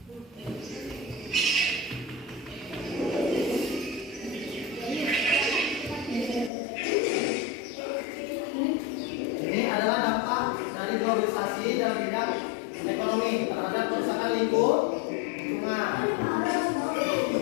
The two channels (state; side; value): drops out; right; at 6.5 s